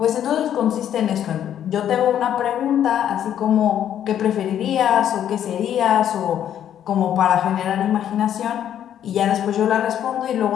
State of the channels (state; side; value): quieter; right; 10.2 dB